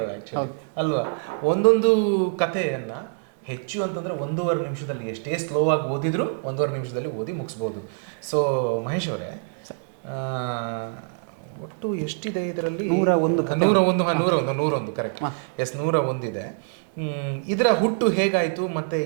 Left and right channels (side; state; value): left; silent; 62 dB below the other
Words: ಆ್ಯಕ್ಚುಲಿ ಅಲ್ವಾ. ಒಂದೊಂದು ಕಥೆಯನ್ನು ಹೆಚ್ಚು ಅಂತಂದರೆ 1.5 ನಿಮಿಷದಲ್ಲಿ, ಎಷ್ಟೇ ಸ್ಲೋ ಆಗಿ ಓದಿದ್ರು 1.5 ನಿಮಿಷದಲ್ಲಿ ಓದಿ ಮುಗಿಸ್ಬೋದು. ಸೊ ಮಹೇಶ್ ಅವರೇ, ಒಟ್ಟು ಎಷ್ಟಿದೆ ಇದರಲ್ಲಿ? 101 ಕರೆಕ್ಟ್. ಎಸ್, 101 ಇದೆ. ಇದರ ಹುಟ್ಟು ಹೇಗಾಯಿತು ಮತ್ತು